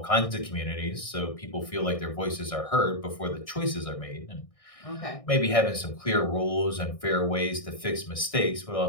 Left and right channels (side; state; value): right; late; 1.6 ms